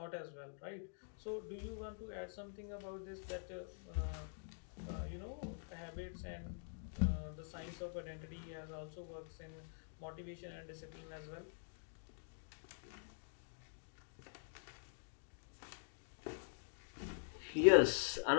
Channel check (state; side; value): silent; right; digital silence